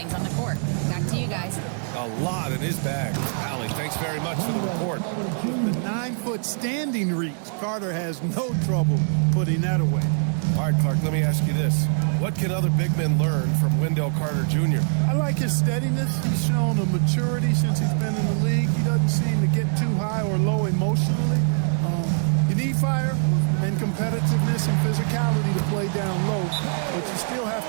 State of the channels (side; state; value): left; silent; 59 dB below the other